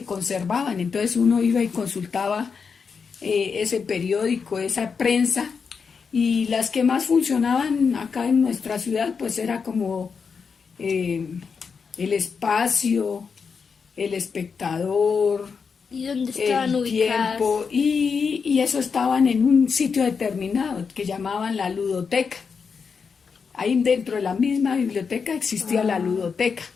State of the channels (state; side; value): quieter; right; 5.7 dB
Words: conservaban. Entonces uno iba y consultaba ese periódico, esa prensa, y las que más funcionaban acá en nuestra ciudad, pues era como El Espacio, El Espectador, ¿Y dónde estaban El ubicadas? Tiempo, y eso estaban en un sitio determinado que llamaban la ludoteca. Ahí dentro de la misma biblioteca existía la ludoteca.